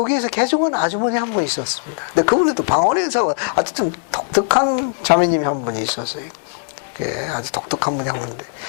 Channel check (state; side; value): silent; right; 66 dB below the other